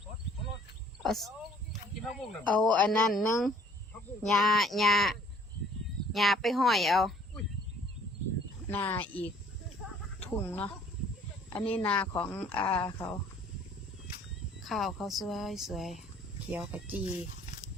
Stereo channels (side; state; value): both; normal; correlation 0.57